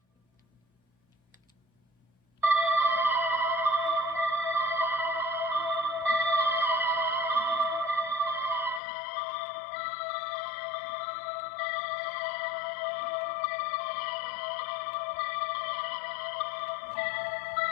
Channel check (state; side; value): drops out; right; at 8.8 s